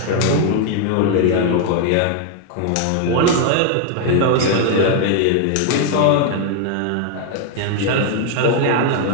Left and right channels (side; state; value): both; different; correlation 0.00